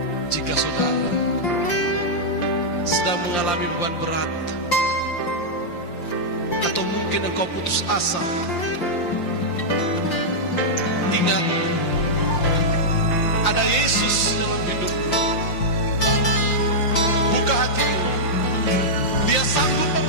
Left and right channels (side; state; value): right; late; 5.8 ms